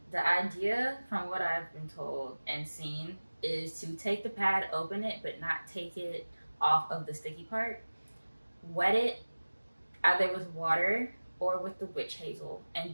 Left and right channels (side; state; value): both; inverted; correlation -1.00